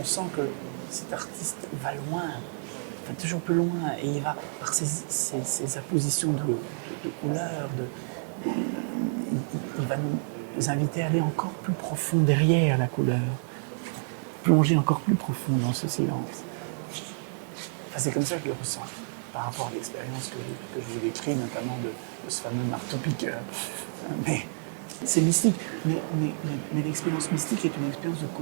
sent que cet artiste va loin, va toujours plus loin, et il va, par ses appositions de couleurs, il va nous inviter à aller encore plus profond derrière la couleur, plonger encore plus profond dans ce silence. Enfin, c'est comme ça que je le ressens, par rapport à l'expérience que je vous décris, notamment de ce fameux marteau-piqueur. Mais c'est mystique. Mais l'expérience mystique est une expérience de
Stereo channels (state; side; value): silent; left; 58 dB below the other